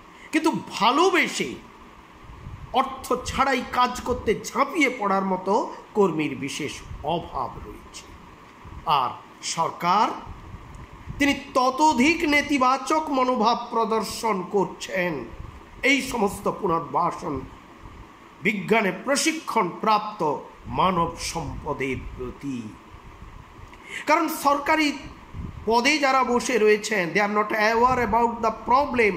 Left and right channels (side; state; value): both; identical; correlation 1.00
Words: কিন্তু ভালোবেসে অর্থ ছাড়াই কাজ করতে ঝাঁপিয়ে পড়ার মতো কর্মীর বিশেষ অভাব রয়েছে। আর সরকার তিনি ততোধিক নেতিবাচক মনোভাব প্রদর্শন করছেন এই সমস্ত পুনর্বাসন বিজ্ঞানে প্রশিক্ষণ প্রাপ্ত মানব সম্পদের প্রতি। কারণ সরকারি পদে যারা বসে রয়েছেন, they are not aware about the problem